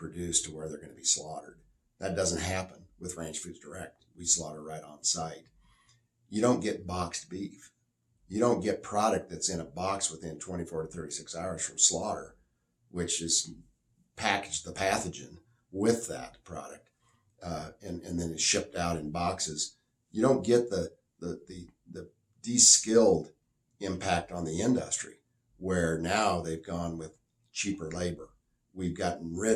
to where they're going to be slaughtered. That doesn't happen with Ranch Foods Direct. We slaughter right on site. You don't get boxed beef. You don't get product that's in a box within 24 to 36 hours from slaughter, which is packaged the pathogen with that product, and then it's shipped out in boxes. You don't get the de-skilled impact on the industry, where now they've gone with cheaper labor. We've gotten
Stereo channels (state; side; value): identical; both; correlation 1.00